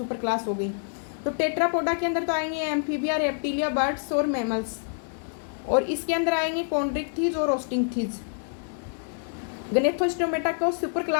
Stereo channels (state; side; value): silent; right; digital silence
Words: क्लास हो गई। तो टेट्रापोडा के अंदर तो आएंगे एम्फीबिया, रेप्टिलिया, बर्ड्स और मैमल्स, और इसके अंदर आएंगे कॉन्ड्रिक्थीज और ओस्टिंगथीज। गनेथोस्टोमेटा को सुपर